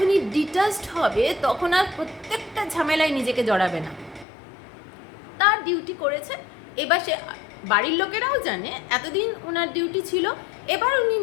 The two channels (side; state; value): right; drops out; at 4.2 s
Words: ডিটাচড হবে তখন আর প্রত্যেকটা ঝামেলায় নিজেকে জড়াবে না, তার ডিউটি করেছে, এবার সে বাড়ির লোকেরাও জানে এতদিন ওনার ডিউটি ছিল, এবার উনি